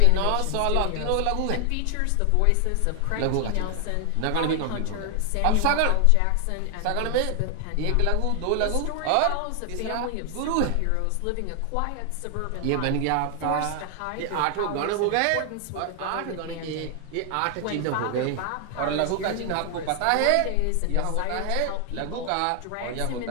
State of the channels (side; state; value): both; different; correlation 0.00